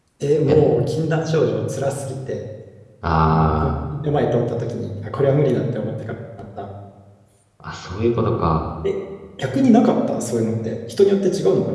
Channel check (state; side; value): identical; both; correlation 1.00